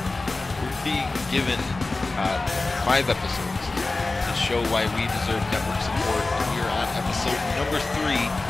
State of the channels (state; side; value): quieter; right; 3.3 dB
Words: we're being given 5 episodes to show why we deserve network support. We are on episode number 3,